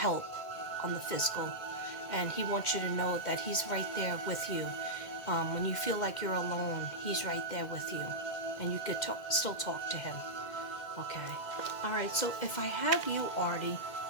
on the physical. And he wants you to know that he's right there with you. When you feel like you're alone, he's right there with you. And you could still talk to him. Okay. All right, so if I have you, Artie,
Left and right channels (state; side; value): late; right; 2.1 ms